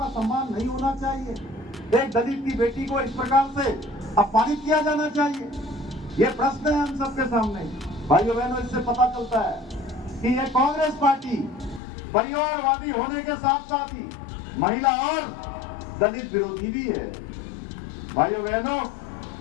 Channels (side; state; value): right; drops out; at 11.8 s